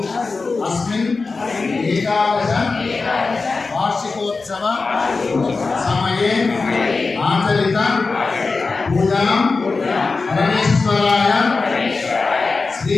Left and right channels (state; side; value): quieter; right; 4.1 dB